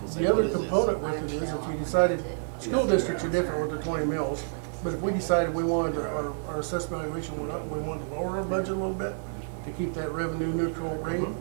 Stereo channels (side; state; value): left; silent; 59 dB below the other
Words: say, The what other is this? component with it is if we decided, school districts are different with their 20 mills, but if we decided we wanted our assessed valuation went up, and we wanted to lower our budget a little bit to keep that revenue neutral rate,